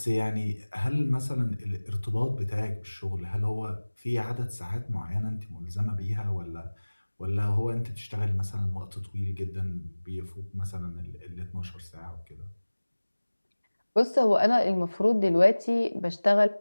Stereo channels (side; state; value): both; inverted; correlation -1.00